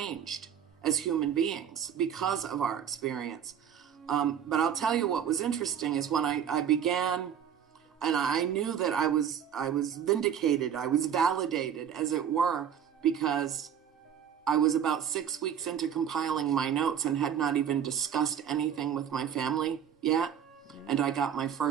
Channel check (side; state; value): left; quieter; 8.6 dB